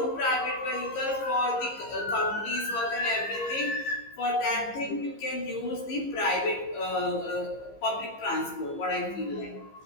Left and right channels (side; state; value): right; late; 15 ms